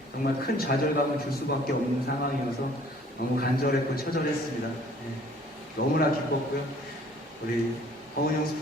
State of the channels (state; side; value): normal; both; correlation 0.56